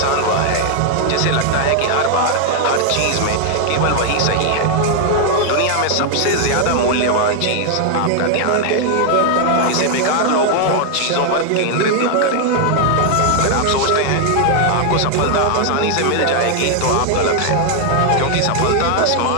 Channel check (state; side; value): different; both; correlation 0.00